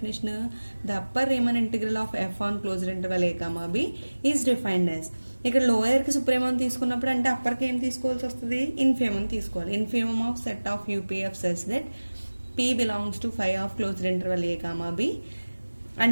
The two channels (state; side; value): inverted; both; correlation -1.00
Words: the upper Riemann integral of f on closed interval A comma b is defined as. ఇక్కడ లోయర్కి సుప్రీమం తీసుకున్నప్పుడు అంటే అప్పర్కి ఏం తీసుకోవాల్సి వస్తుంది, ఇన్ఫీమం తీసుకోవాలి. Infimum of set of UPF such that p belongs to phi of closed interval A comma b